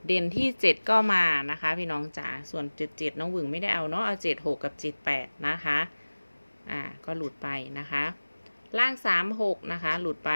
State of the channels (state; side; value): inverted; both; correlation -1.00